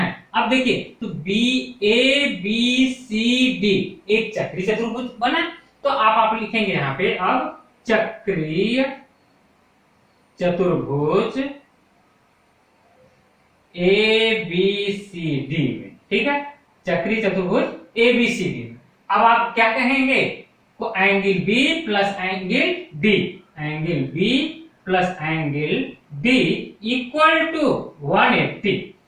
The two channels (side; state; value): both; identical; correlation 1.00